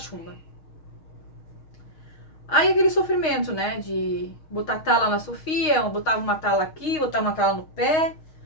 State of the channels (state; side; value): late; right; 6.4 ms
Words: Aí aquele sofrimento, né, de botar tala na Sofia, botava uma tala aqui, botava uma tala no pé,